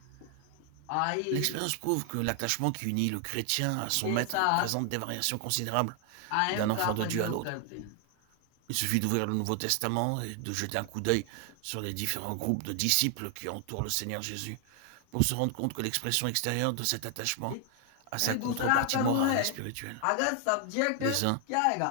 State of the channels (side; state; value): both; different; correlation 0.00